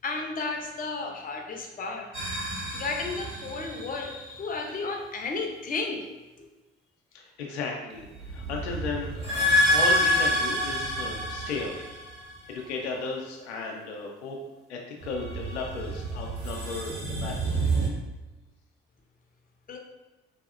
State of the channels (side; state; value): both; normal; correlation 0.31